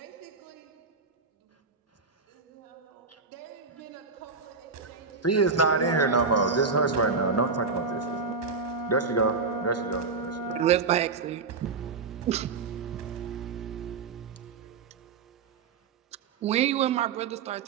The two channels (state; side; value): quieter; left; 4.7 dB